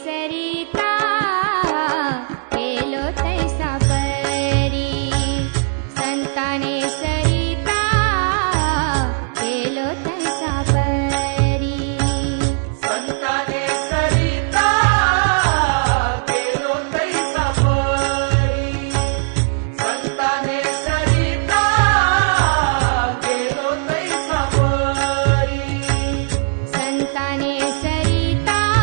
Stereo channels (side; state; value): left; silent; digital silence